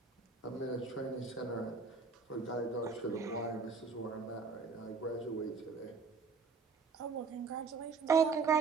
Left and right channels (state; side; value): quieter; left; 4.8 dB